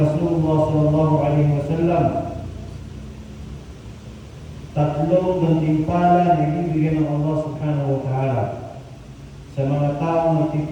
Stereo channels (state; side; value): identical; both; correlation 1.00